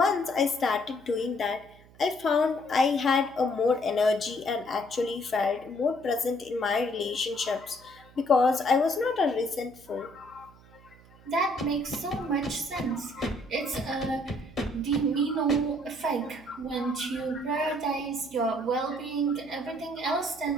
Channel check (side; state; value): right; noise; hum, 24 dB below the sound